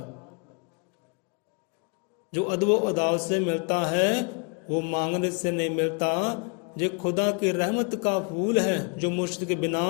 जो अदब अदाब से मिलता है वो मांगने से नहीं मिलता। ये खुदा की रहमत का फूल है जो मुर्शिद के बिना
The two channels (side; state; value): right; quieter; 37.0 dB